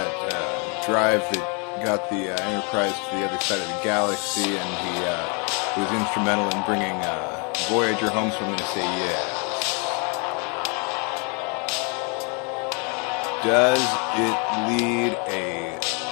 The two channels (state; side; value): quieter; right; 34.9 dB